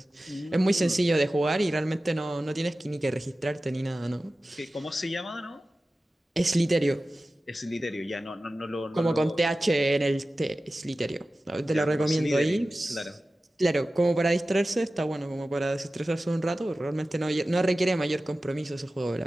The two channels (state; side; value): normal; both; correlation 0.95